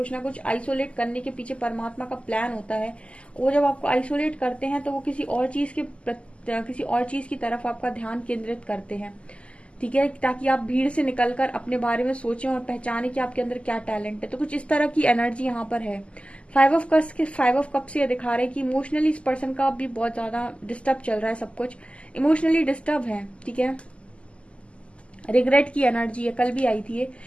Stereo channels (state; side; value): late; right; 0.057 ms